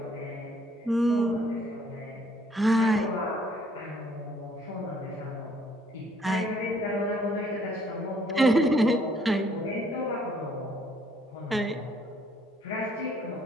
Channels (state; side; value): normal; both; correlation 0.64